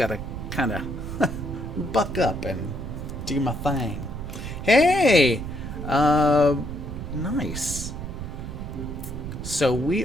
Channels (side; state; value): right; noise; rumble, 7 dB below the sound